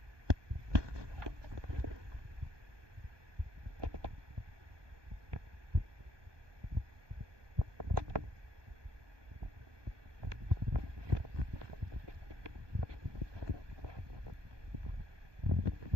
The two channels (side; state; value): left; late; 1.2 ms